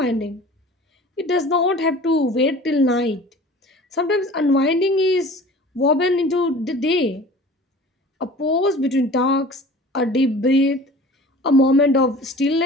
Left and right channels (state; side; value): normal; both; correlation 0.43